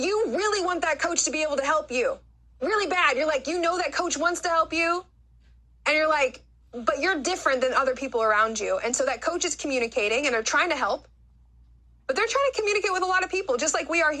you really want that coach to be able to help you really bad. You're like, you know that coach wants to help you and you're like, but you're different than other people around you. And so that coach is communicating and they're trying to help, but they're trying to communicate with a lot of people, just like we are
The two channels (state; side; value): identical; both; correlation 1.00